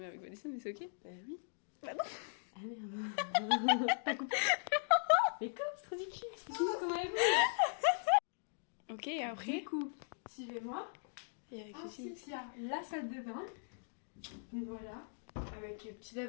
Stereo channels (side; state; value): right; silent; digital silence